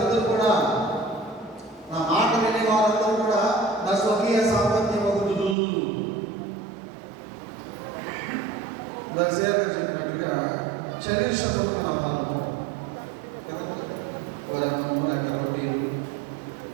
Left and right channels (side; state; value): left; drops out; at 5.6 s